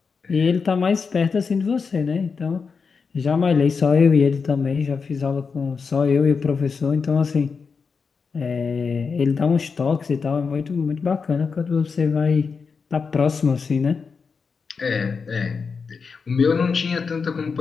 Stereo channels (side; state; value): right; quieter; 5.3 dB